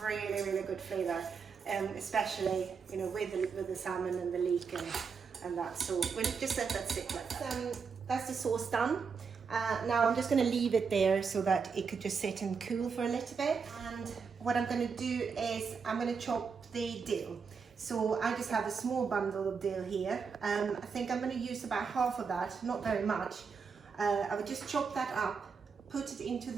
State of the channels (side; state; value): left; quieter; 5.7 dB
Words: really, really good flavour, especially, you know, with the salmon and the leek and that. So we'll just let that sit like that. That's the sauce done. Now I'm just going to leave it there so that it could just sit and cool for a little bit. And what I'm going to do is I'm going to chop the dill. So I just have a small bundle of dill here. I think I'm going to use about half of that, not very much. I would just chop that up, put it into